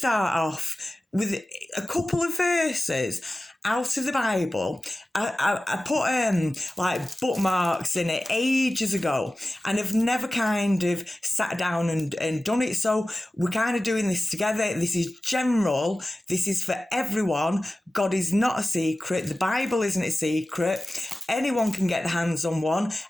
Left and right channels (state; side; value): normal; both; correlation 0.96